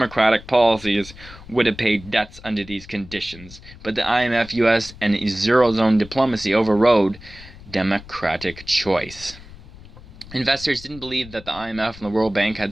policies would have paid debts under these conditions. But the IMF, US, and Eurozone diplomacy overrode democratic choice. Investors didn't believe that the IMF and the World Bank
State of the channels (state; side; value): noise; left; rumble, 18 dB below the sound